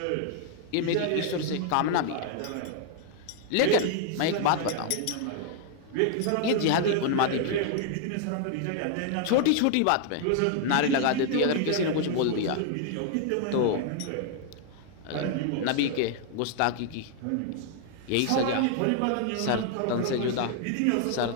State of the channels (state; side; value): different; both; correlation 0.00